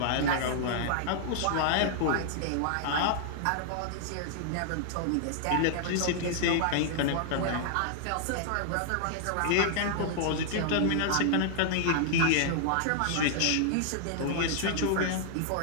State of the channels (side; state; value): both; different; correlation -0.01